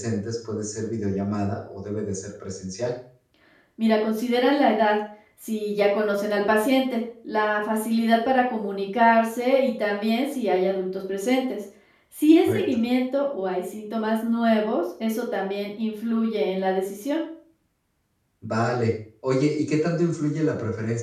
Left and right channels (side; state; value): both; identical; correlation 1.00